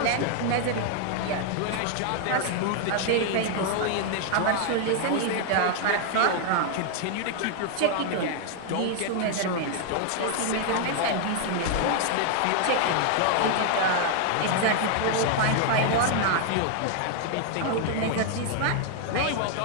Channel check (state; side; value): different; both; correlation 0.00